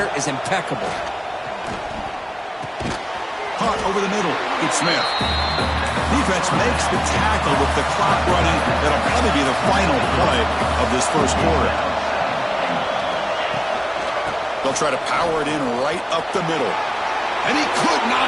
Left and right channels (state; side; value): identical; both; correlation 1.00